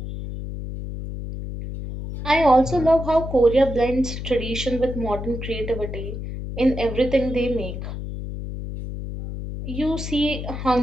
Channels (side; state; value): left; noise; hum, 7 dB below the sound